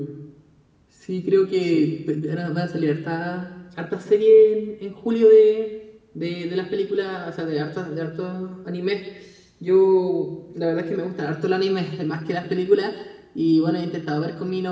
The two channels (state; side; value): identical; both; correlation 1.00